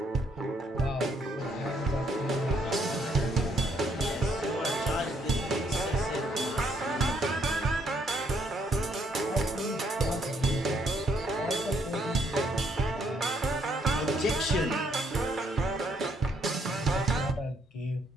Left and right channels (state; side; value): normal; both; correlation 0.71